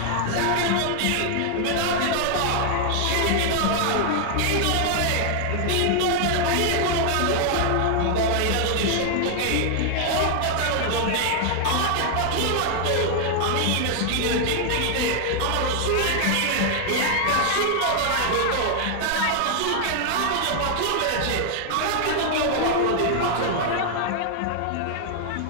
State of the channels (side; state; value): both; different; correlation 0.00